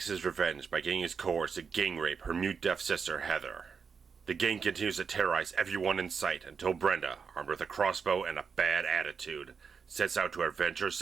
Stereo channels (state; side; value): quieter; left; 5.9 dB